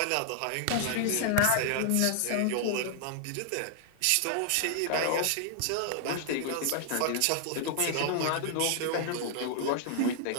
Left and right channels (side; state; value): both; different; correlation -0.01